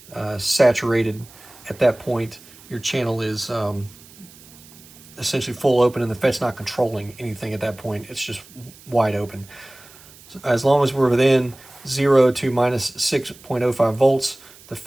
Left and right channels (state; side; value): noise; right; hiss, 22 dB below the sound